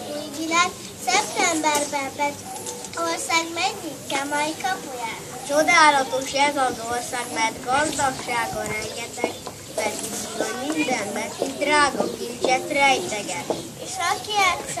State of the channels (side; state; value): both; identical; correlation 1.00